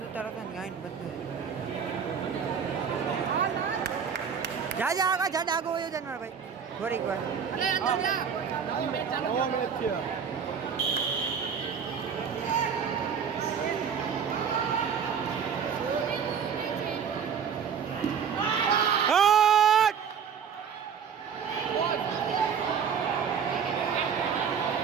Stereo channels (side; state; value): left; quieter; 7.1 dB